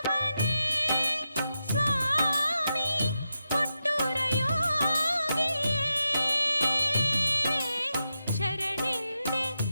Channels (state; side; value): inverted; both; correlation -0.88